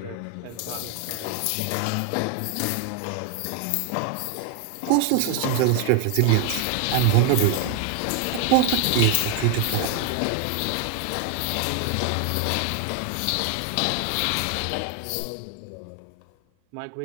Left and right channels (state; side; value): different; both; correlation 0.00